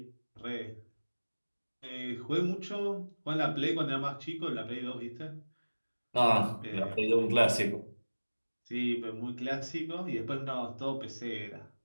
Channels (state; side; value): inverted; both; correlation -1.00